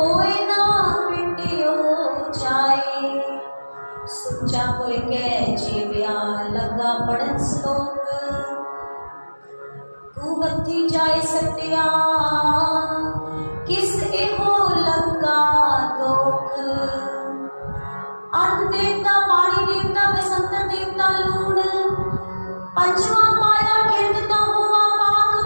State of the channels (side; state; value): both; inverted; correlation -1.00